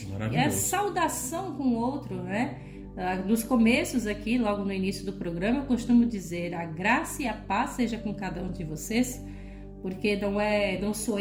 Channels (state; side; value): identical; both; correlation 1.00